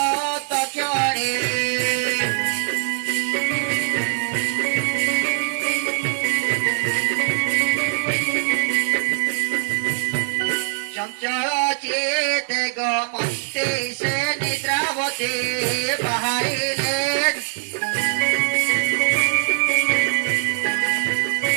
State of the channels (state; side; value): silent; left; 64 dB below the other